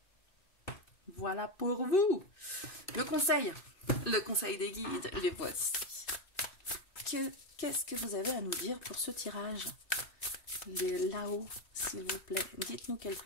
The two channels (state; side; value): late; right; 2.6 ms